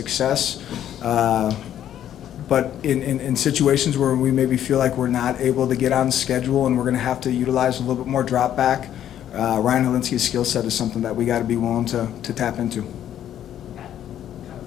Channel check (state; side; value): quieter; right; 10.9 dB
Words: But in situations where we maybe feel like we're not able to get on schedule and we're going to have to utilize a little bit more drop back, Ryan Helinski's skill set is something that we got to be willing to tap into.